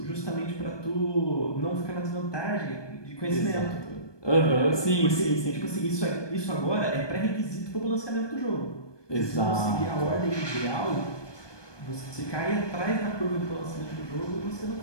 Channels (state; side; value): late; right; 1.2 ms